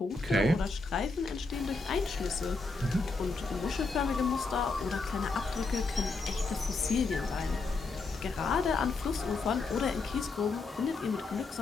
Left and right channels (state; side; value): quieter; right; 3.8 dB